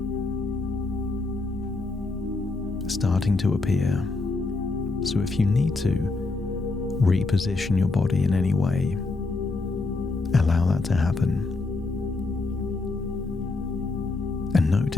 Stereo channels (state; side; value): quieter; right; 3.5 dB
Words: starting to appear. So if you need to reposition your body in any way, allow that to happen. And